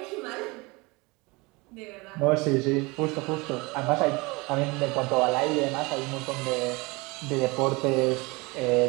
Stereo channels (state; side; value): quieter; left; 25.3 dB